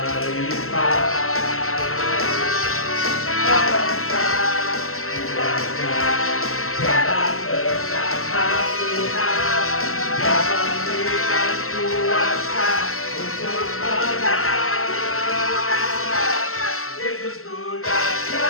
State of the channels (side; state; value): right; late; 0.62 ms